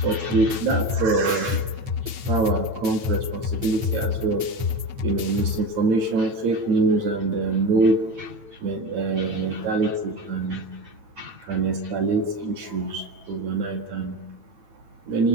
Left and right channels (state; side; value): late; left; 8.9 ms